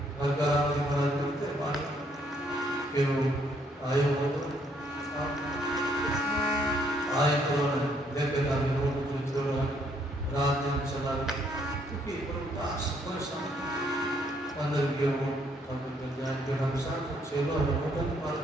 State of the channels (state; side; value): normal; both; correlation 0.69